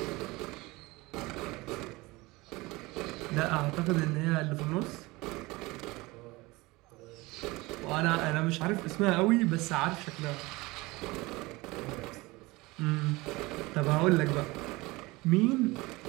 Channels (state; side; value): quieter; left; 22.2 dB